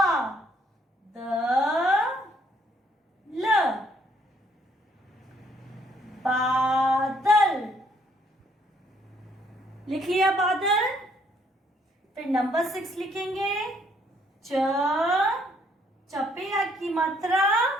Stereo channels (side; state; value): both; normal; correlation 0.67